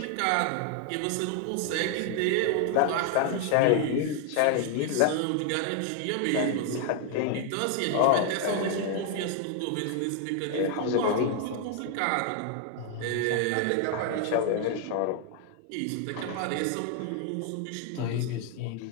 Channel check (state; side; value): different; both; correlation 0.00